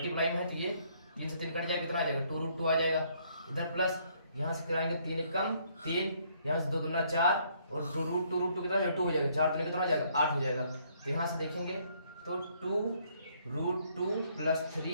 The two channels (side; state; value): both; inverted; correlation -0.67